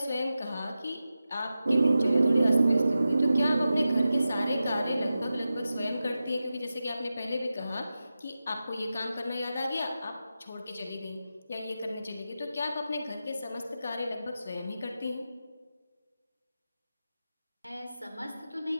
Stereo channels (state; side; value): inverted; both; correlation -0.92